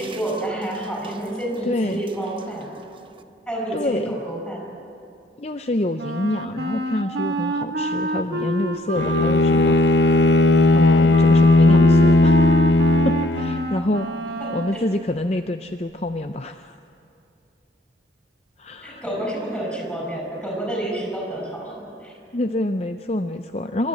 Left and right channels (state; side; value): normal; both; correlation 0.63